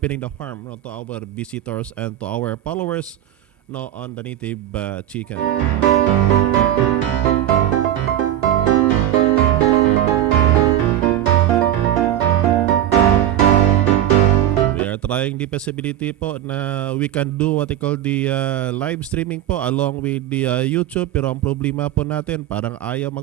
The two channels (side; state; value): left; quieter; 12.0 dB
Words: the farm, no, to our visitors and to our followers, no, on the native chicken. Trying the possibility po na we can do what they call the live streaming po along with the YouTube, pero ang problema po natin parang ayaw